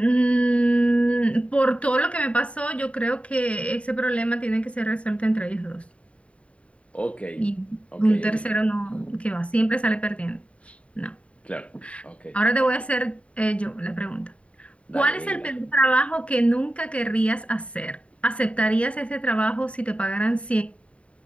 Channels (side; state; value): right; late; 0.063 ms